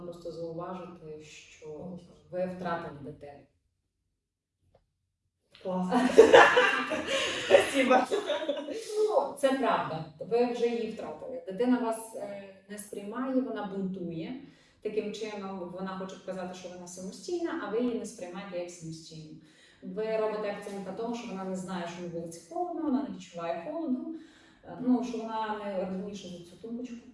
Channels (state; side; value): identical; both; correlation 1.00